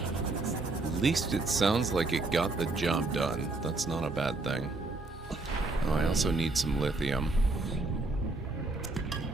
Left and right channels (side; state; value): left; quieter; 3.2 dB